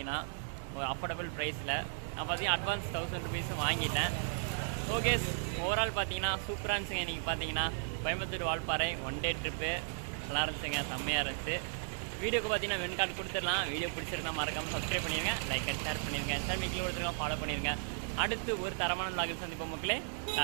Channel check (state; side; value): silent; left; digital silence